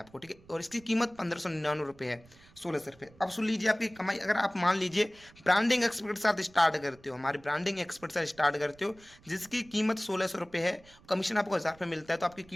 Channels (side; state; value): right; noise; rumble, 26 dB below the sound